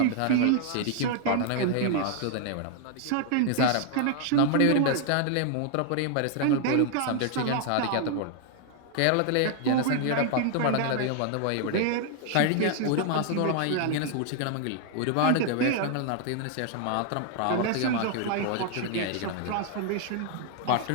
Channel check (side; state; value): both; different; correlation 0.00